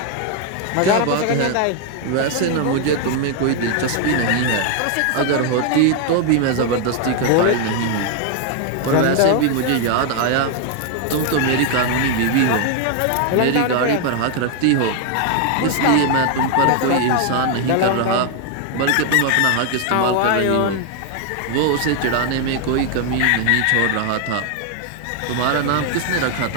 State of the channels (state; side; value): different; both; correlation 0.00